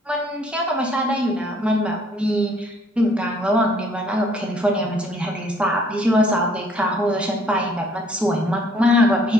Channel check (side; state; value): both; normal; correlation 0.60